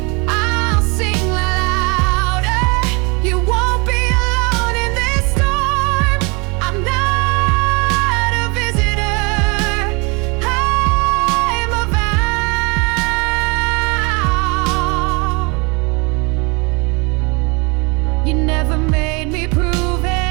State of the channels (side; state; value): left; quieter; 29.7 dB